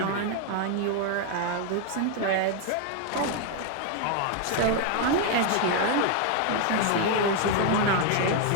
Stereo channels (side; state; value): both; different; correlation 0.01